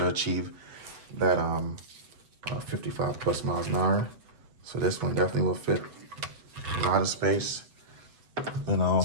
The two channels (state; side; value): late; left; 8.0 ms